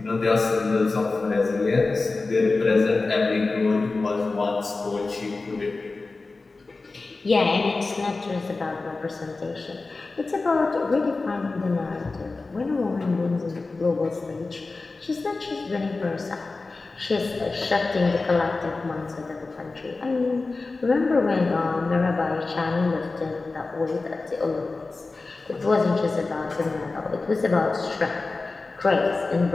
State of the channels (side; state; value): right; quieter; 3.6 dB